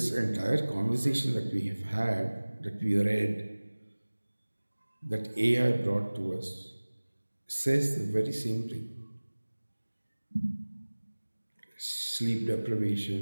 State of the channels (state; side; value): inverted; both; correlation -1.00